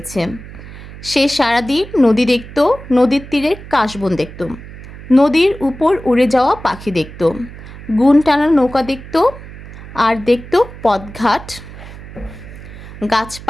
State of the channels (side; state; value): right; noise; hum, 15 dB below the sound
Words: সে সারাদিন নদী দেখত, নদীর তীরের কাশবন দেখত, নদীর উপর উড়ে যাওয়া পাখি দেখত, গুণ টানা নৌকা দেখত, আর দেখত পথঘাট,